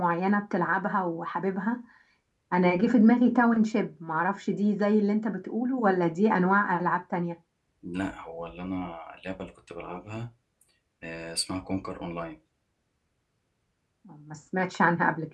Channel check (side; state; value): both; identical; correlation 1.00